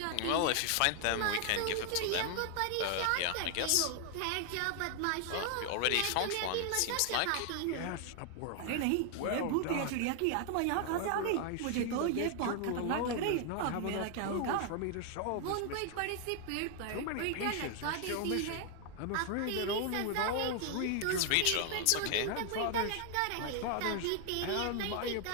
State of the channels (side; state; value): both; different; correlation 0.00